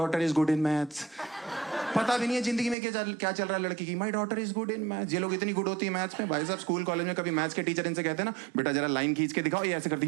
is good in maths. पता भी नहीं है जिंदगी में क्या चल रहा है लड़की की। My daughter is good in maths. ये लोग इतनी गुड होती है मैथ्स में भाई साहब। स्कूल कॉलेज में कभी मैथ्स के टीचर इनसे कहते हैं ना, बेटा जरा लाइन खींच के दिखाओ, ये ऐसे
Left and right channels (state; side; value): drops out; left; at 2.8 s